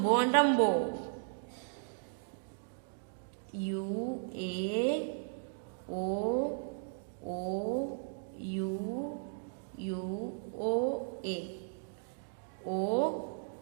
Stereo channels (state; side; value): silent; left; digital silence